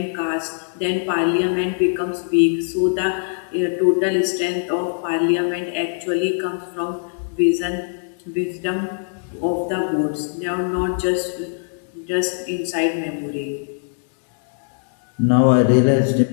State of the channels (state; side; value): silent; right; digital silence